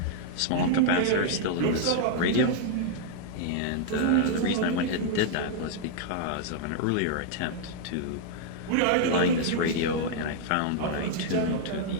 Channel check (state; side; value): different; both; correlation -0.01